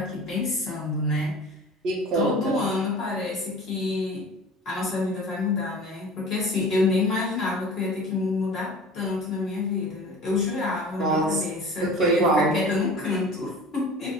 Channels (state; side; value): normal; both; correlation 0.40